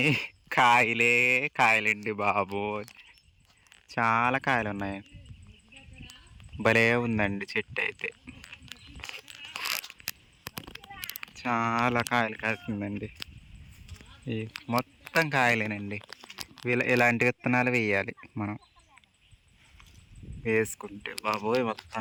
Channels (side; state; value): both; identical; correlation 1.00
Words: కాయలే కాయలండి బాబు, చాలా కాయలు ఉన్నాయి. భలే ఉందండి చెట్టు అయితే, చాలా కాయలు కాస్తుందండి. ఈ మొత్తం కాయలేనండి. ఇలాంటి విత్తనాలు వేయాలి మనం, వేసుకుంటే బాబోయ్